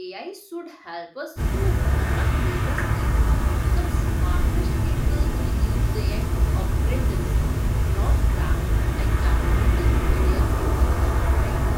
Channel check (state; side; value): identical; both; correlation 1.00